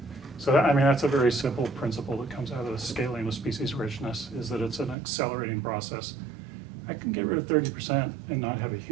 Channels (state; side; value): drops out; left; at 5.0 s